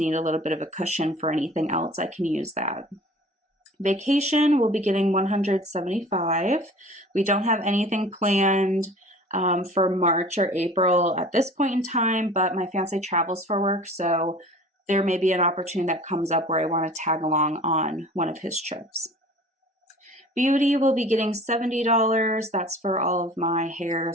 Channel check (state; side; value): normal; both; correlation 0.44